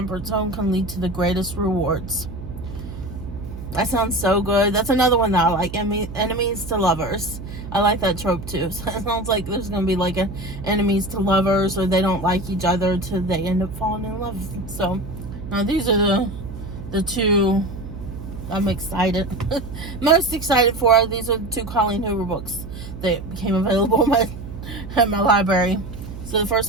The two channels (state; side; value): noise; right; hum, 11 dB below the sound